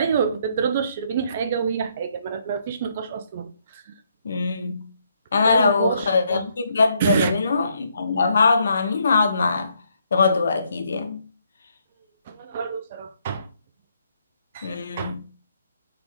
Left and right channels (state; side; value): inverted; both; correlation -0.72